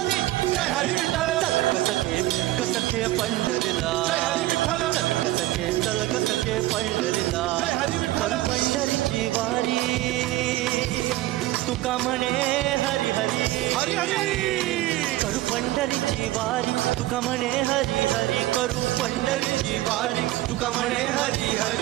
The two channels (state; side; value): quieter; left; 16.9 dB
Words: चल ग सखे पंढरीला चल ग सखे पंढरीला चल पंढरीची वारी तुका म्हणे हरी हरी हरी हरी करू पंढरीची वारी तुका म्हणे हरी हरी करू पंढरीची वारी तुका म्हणे हरी